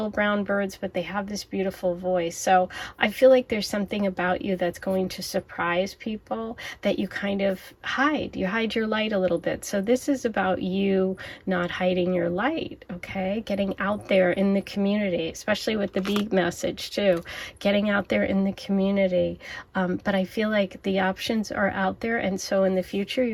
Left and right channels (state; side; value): identical; both; correlation 1.00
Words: brown birds, but they have this beautiful voice. So I feel like there's something about you that's going to surprise people that you kind of hide. You hide your light a little bit. So this is about you not hiding your light, okay? Getting out there in the community, especially with the bee message too, getting out there in the community. But I feel like the options are out there, and so in the future